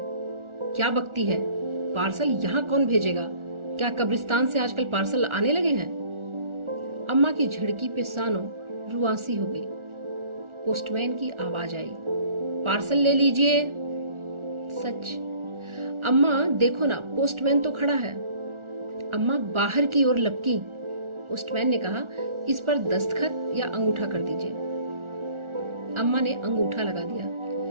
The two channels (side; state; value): left; late; 1.4 ms